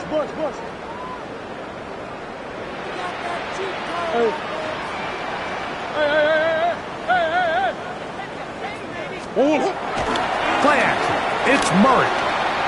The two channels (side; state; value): both; identical; correlation 1.00